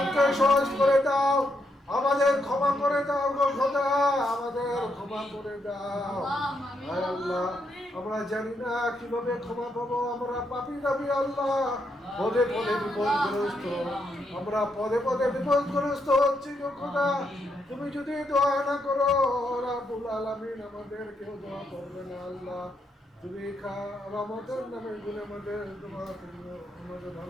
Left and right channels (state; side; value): normal; both; correlation 0.79